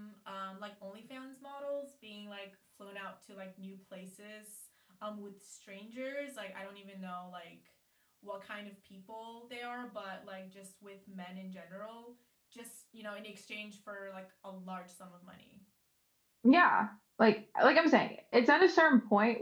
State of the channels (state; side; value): identical; both; correlation 1.00